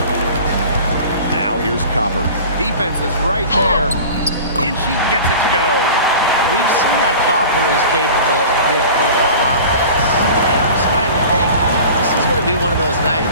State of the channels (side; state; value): both; inverted; correlation -0.39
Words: Now here's Copper. Defense is right there. And she gets it to go. We've seen that Copper is capable of big things on offense. And I'm starting to think this is going to be one of those